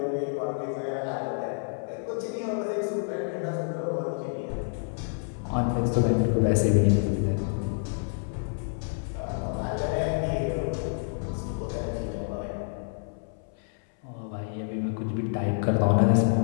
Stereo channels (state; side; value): silent; right; 59 dB below the other